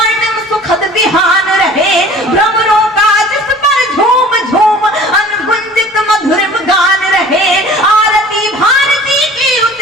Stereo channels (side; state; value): both; normal; correlation 0.46